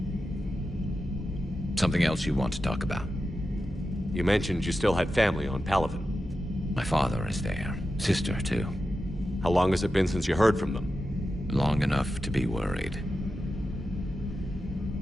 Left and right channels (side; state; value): both; normal; correlation 0.91